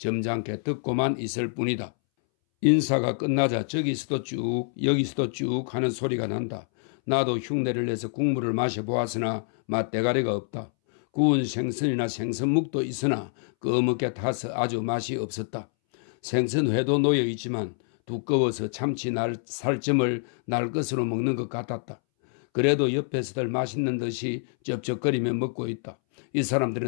듣고만 있을 뿐이다. 인사가 끝나자 저기서도 쭉 여기서도 쭉 하는 소리가 난다. 나도 흉내를 내서 국물을 마셔보았으나 맛대가리가 없다. 구운 생선이나 생선묵도 있으나 꺼멓게 타서 아주 맛이 없었다. 생선회도 놓여있지만 두꺼워서 참치 살점을 날 것으로 먹는 것 같았다. 그래도 옆에서들 맛있는 듯이 쩝쩝거리며 먹고 있다. 이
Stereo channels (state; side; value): silent; right; 61 dB below the other